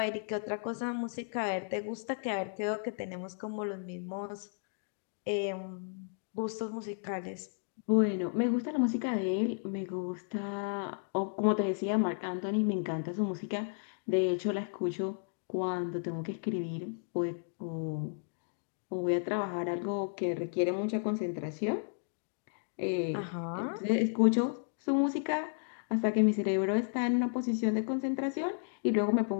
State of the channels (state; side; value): silent; right; digital silence